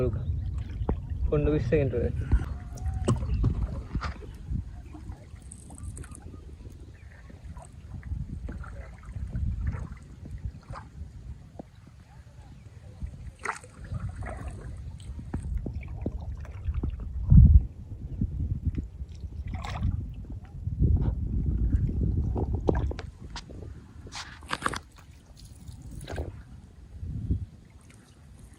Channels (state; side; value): identical; both; correlation 1.00